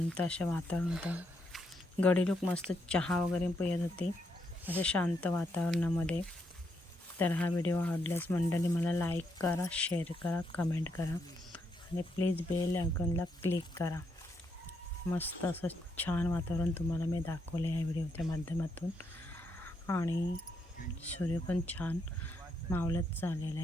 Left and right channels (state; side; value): normal; both; correlation 0.78